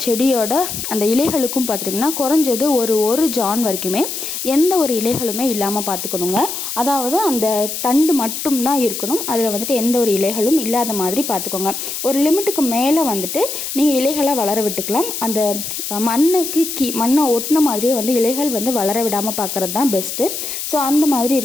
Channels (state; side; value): noise; left; hiss, 5 dB below the sound